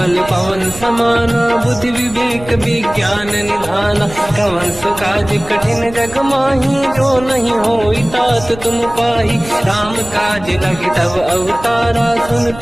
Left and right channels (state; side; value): noise; right; rumble, 16 dB below the sound